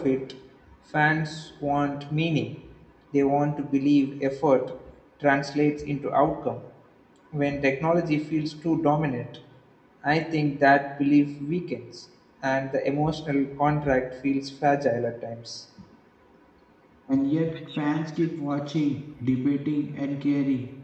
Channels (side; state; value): both; identical; correlation 1.00